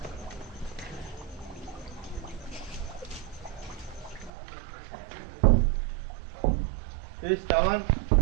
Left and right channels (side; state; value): left; drops out; at 4.3 s